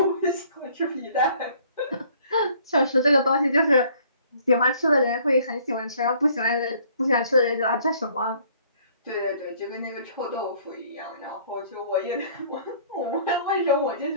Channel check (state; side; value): inverted; both; correlation -0.58